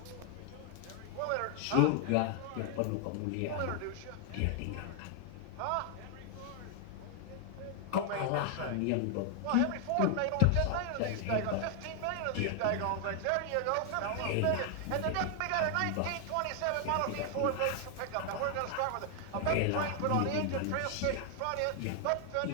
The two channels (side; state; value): both; different; correlation 0.00